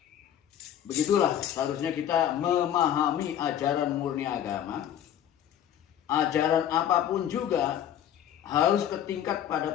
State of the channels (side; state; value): right; quieter; 10.4 dB